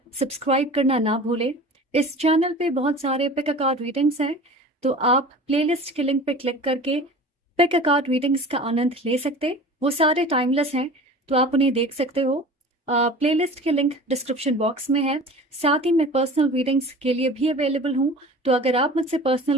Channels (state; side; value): normal; both; correlation 0.39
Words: सब्सक्राइब करना ना भूलें। इस चैनल पे बहुत सारे पिक अ कार्ड रीडिंग्स हैं, तो आप प्लेलिस्ट के लिंक पे क्लिक करके पिक अ कार्ड रीडिंग्स का आनंद ले सकते। वो सारे टाइमलेस हैं, तो आप उन्हें देख सकते हो। प्लेलिस्ट के लिंक डिस्क्रिप्शन बॉक्स में है। साथ ही मैं पर्सनल रीडिंग्स के लिए भी अवेलेबल हूँ, तो अगर आप मुझसे